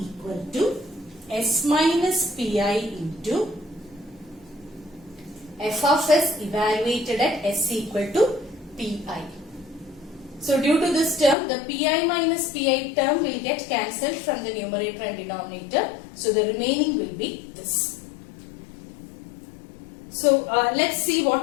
to S minus Pi into f of s evaluated at s equal to Pi. So due to this term, the Pi minus Pi term will get cancelled from the numerator and denominator. So the remaining will be this. So let's see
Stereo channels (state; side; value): drops out; right; at 11.4 s